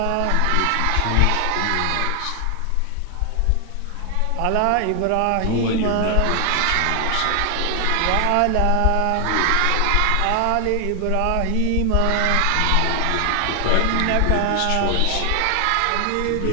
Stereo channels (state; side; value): different; both; correlation 0.00